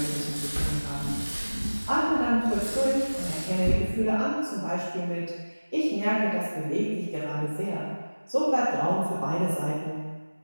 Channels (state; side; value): inverted; both; correlation -1.00